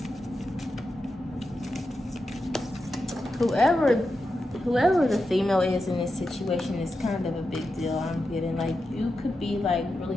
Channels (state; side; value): normal; both; correlation 0.89